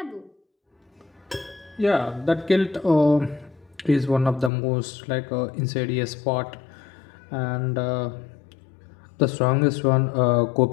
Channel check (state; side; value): drops out; right; at 4.5 s